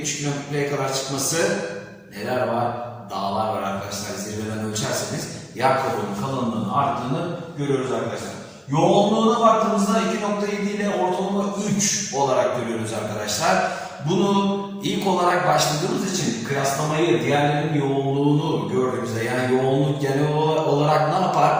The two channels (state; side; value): identical; both; correlation 1.00